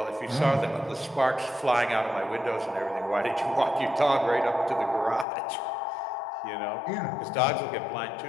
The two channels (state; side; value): drops out; right; at 5.2 s